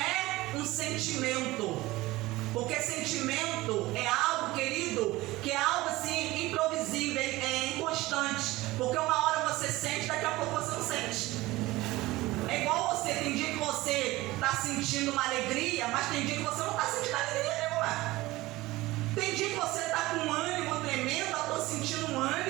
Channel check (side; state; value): left; quieter; 19.0 dB